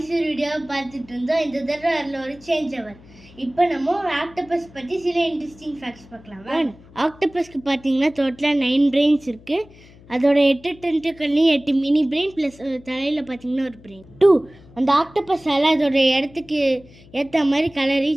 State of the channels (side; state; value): left; noise; hum, 24 dB below the sound